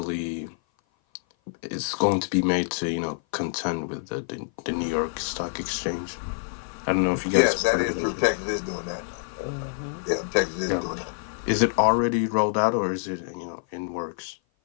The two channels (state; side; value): silent; right; 56 dB below the other